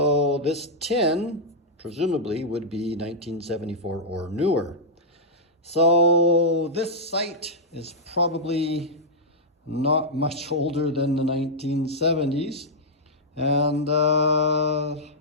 this tin, presumably, would be 1974 or newer. So this site is probably not much older than the 1970s, and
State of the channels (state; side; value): normal; both; correlation -0.08